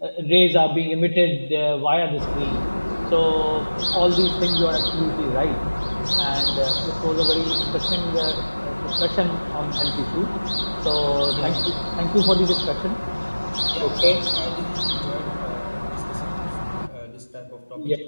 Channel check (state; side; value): inverted; both; correlation -1.00